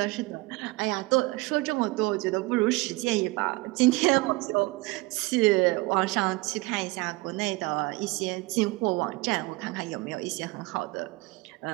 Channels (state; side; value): quieter; left; 22.8 dB